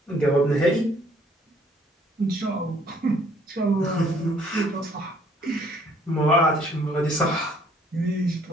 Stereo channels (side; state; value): both; normal; correlation 0.61